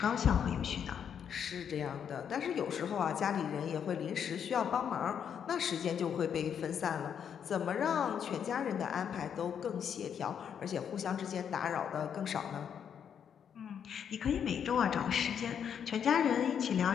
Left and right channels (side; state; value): right; quieter; 8.1 dB